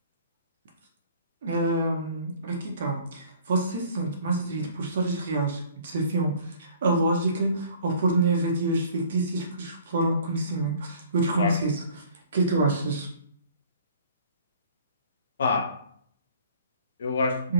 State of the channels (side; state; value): both; inverted; correlation -0.51